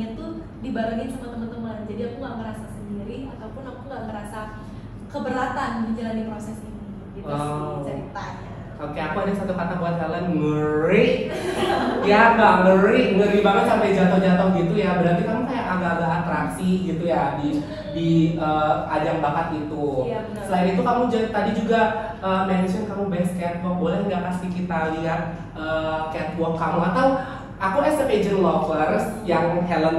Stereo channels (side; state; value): both; identical; correlation 1.00